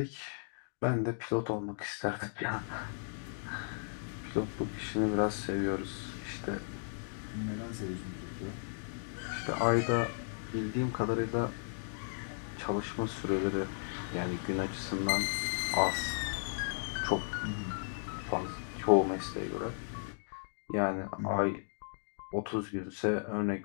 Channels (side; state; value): right; silent; digital silence